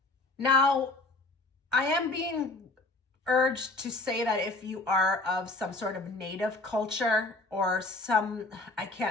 Now, I am being urged to say that if you are of some sort of native culture or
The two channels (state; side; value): quieter; right; 3.1 dB